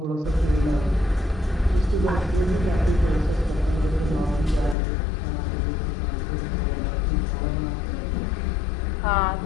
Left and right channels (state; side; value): drops out; right; at 4.8 s